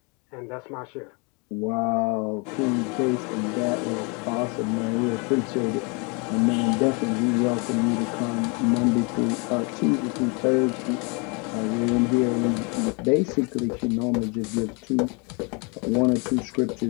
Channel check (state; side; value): quieter; right; 32.0 dB